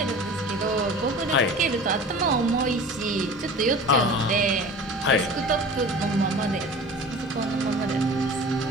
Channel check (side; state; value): both; normal; correlation 0.39